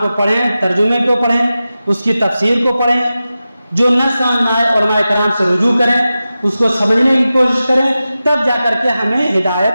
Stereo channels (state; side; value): inverted; both; correlation -0.94